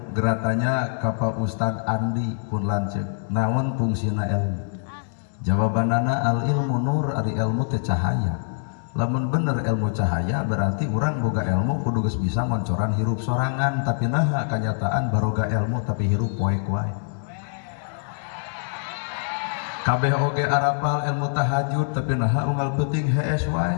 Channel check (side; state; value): right; silent; 60 dB below the other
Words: geratanya ka Pak Ustad Andi pun lanceuk. Naon fungsina ilmu? Jawabanana al ilmu nur ari ilmu teh cahaya. Lamun bener ilmu cahaya berarti urang boga ilmu kudu geus bisa ngoncoran hirup sorangan tapi naha kenyataan baroga ilmu tapi hirup poek wae. Kabeh oge arapal ilmu tahajud tapi naha unggal peuting hees